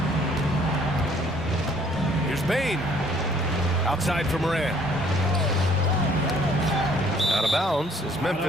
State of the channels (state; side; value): normal; both; correlation 0.60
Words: Here's Bain. Outside for Morant. Out of bounds as